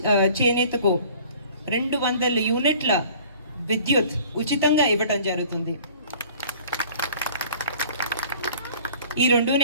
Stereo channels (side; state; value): both; inverted; correlation -0.49